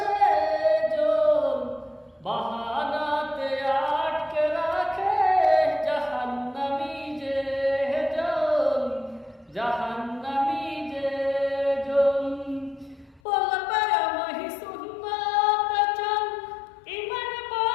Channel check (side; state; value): right; drops out; at 13.2 s